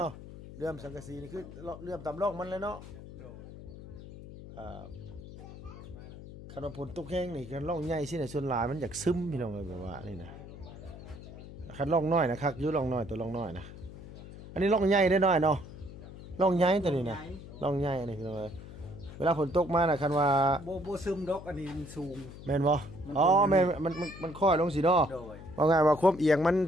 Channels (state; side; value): noise; left; hum, 14 dB below the sound